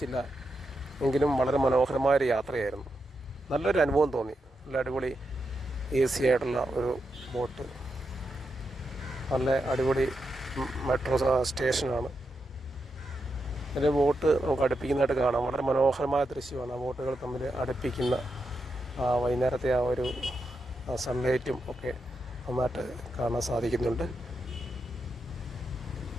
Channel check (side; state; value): both; normal; correlation 0.85